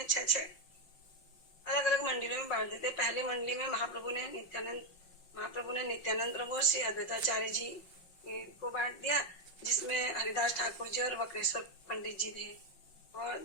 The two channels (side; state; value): right; late; 5.6 ms